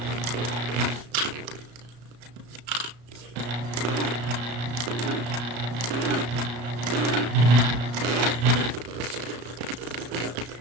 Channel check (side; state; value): left; late; 34 ms